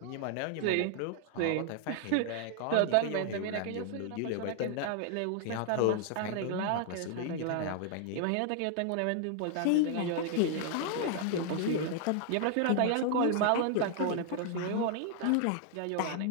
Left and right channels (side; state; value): both; different; correlation 0.00